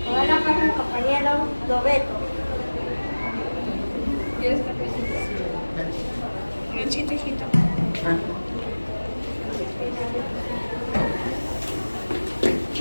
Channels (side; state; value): both; inverted; correlation -1.00